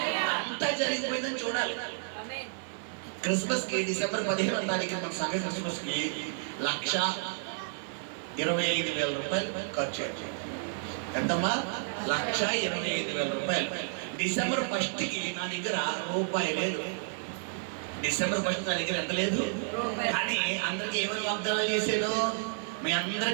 అంతా జరిగిపోయిందని చూడాలి. క్రిస్మస్ కి డిసెంబర్ 15వ తారీఖు మన సంఘ క్రిస్మస్ కి 1,25,000 రూపాయలు ఖర్చు అయ్యాయి. ఎంతమ్మా? 1,25,000 రూపాయలు. డిసెంబర్ 1 కి నా దగ్గర రూపాయి లేదు. డిసెంబర్ 1 నా దగ్గర ఎంత లేదు. కానీ అందరికి ఏమని వాగ్దానం చేశాను? మీ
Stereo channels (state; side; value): silent; left; digital silence